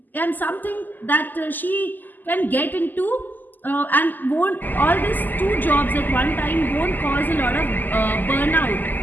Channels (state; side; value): late; right; 0.087 ms